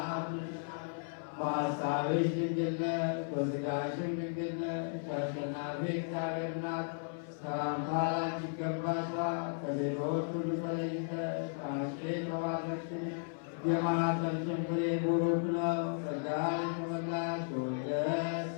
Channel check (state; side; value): silent; right; 54 dB below the other